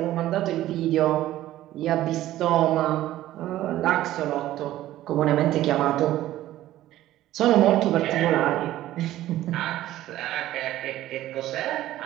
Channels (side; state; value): left; quieter; 14.4 dB